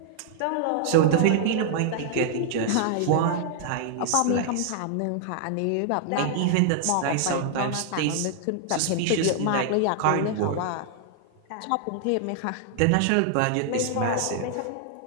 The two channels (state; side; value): different; both; correlation 0.00